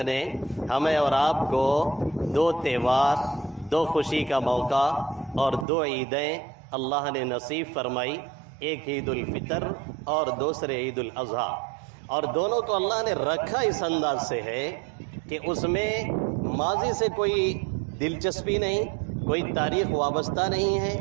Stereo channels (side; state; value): left; drops out; at 5.7 s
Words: نے ہمیں اور آپ کو 2 تہوار، 2 خوشی کا موقع اور 2 عیدیں اللہ نے نصیب فرمائی. ایک عید الفطر اور دوسرے عید الاضحیٰ، اور دونوں کو اللہ نے رکھا اس انداز سے ہے کہ اس میں ماضی سے کوئی دلچسپی نہیں، کوئی تاریخ وابستہ نہیں ہے،